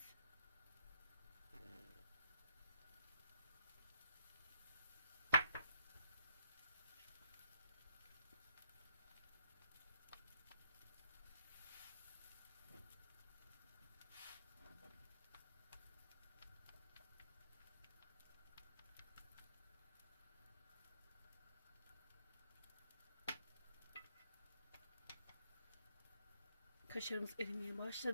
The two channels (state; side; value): inverted; both; correlation -0.66